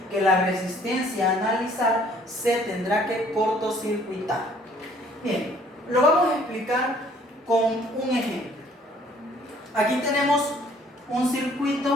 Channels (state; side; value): normal; both; correlation 0.59